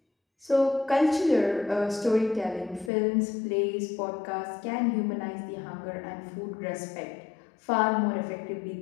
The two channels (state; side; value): drops out; right; at 2.9 s